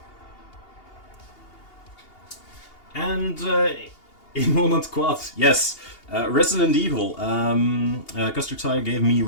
And in Moment Quad, yes, Resident Evil. Custer Tire gave me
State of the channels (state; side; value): late; right; 2.8 ms